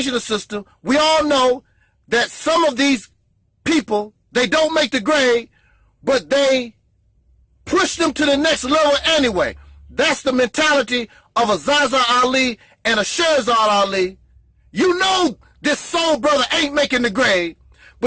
system, we all know that some of these people, they don't make the grade, but they push them to the next level anyway. That's the mentality of a Zaza Ali and a Sherzad Ali. You know this soul brother ain't making the grade,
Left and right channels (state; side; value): identical; both; correlation 1.00